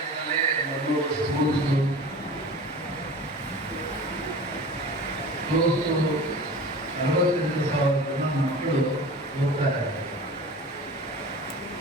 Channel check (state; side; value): normal; both; correlation 0.38